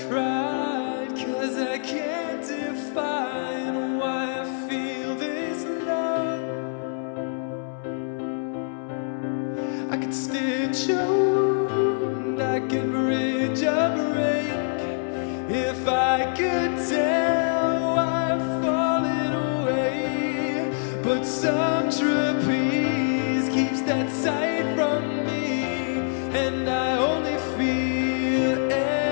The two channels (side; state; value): right; silent; 62 dB below the other